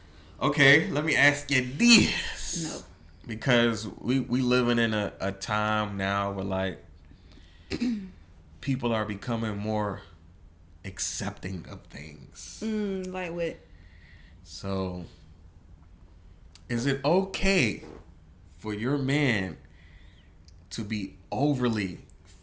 Okay, let me ask you this. No. Because we living in a time now where people are becoming more accepting of things. Like what? So, is it okay for your man to be overly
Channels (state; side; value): identical; both; correlation 1.00